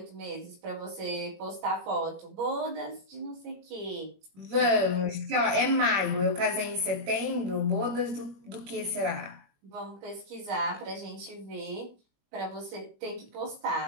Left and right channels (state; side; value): late; left; 21 ms